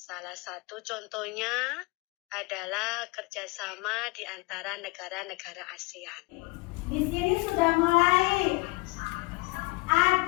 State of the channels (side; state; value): right; quieter; 25.7 dB